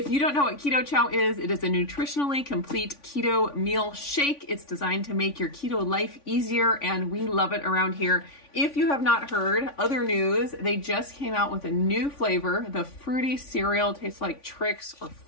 you don't know what Keto Chow is, it is a nutritionally complete keto meal shake. It's designed to make your keto life easier and we love it around here. If you have not heard other news, they just came out with a new flavor. The fruity cereal tastes like Trix or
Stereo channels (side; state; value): right; late; 3.5 ms